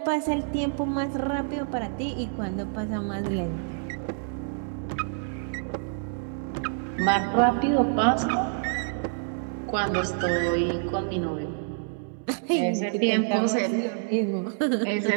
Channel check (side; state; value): left; silent; 60 dB below the other